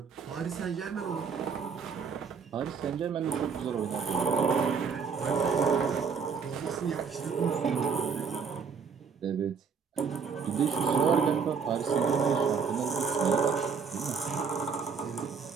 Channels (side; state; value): left; quieter; 6.0 dB